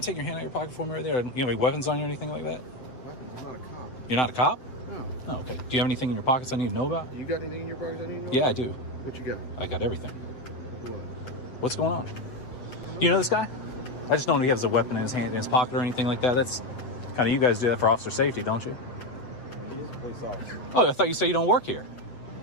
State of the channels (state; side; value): late; right; 7.8 ms